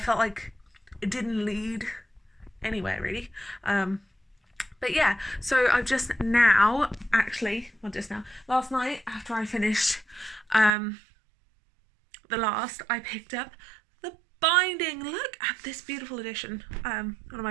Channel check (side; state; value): left; drops out; at 10.7 s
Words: like it didn't lead anywhere really. But yeah, so I've just now, last night after I finished The Last, I picked up the binding. Look at this beautiful edition. One of my